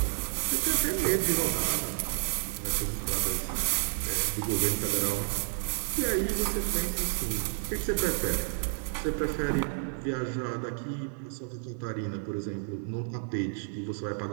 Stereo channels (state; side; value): silent; left; 57 dB below the other